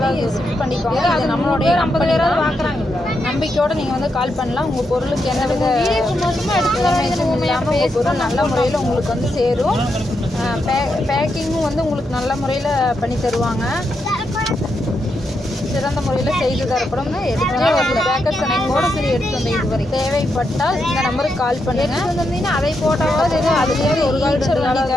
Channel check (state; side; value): normal; both; correlation 0.83